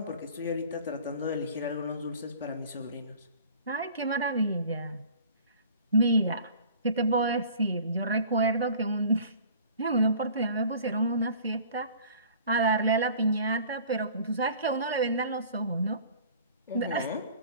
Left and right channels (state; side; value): inverted; both; correlation -0.47